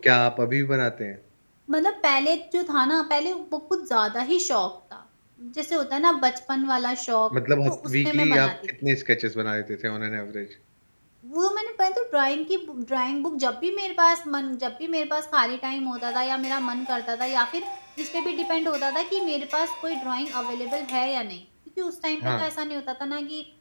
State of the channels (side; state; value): both; inverted; correlation -1.00